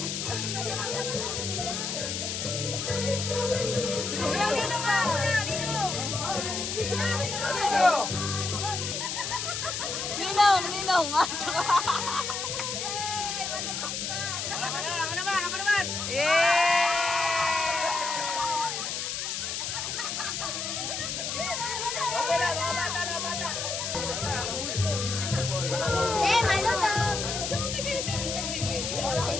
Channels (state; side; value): noise; left; hiss, 3 dB below the sound